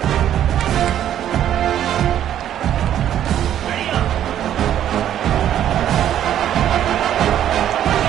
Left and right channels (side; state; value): left; quieter; 10.8 dB